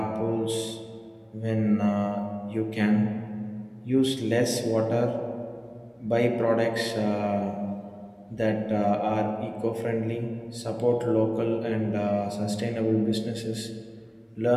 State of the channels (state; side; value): identical; both; correlation 1.00